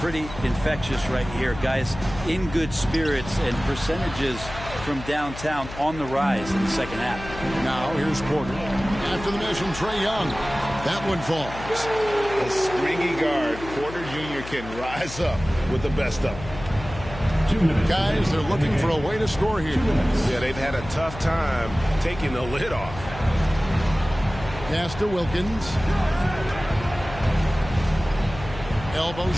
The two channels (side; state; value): left; noise; hum, 12 dB below the sound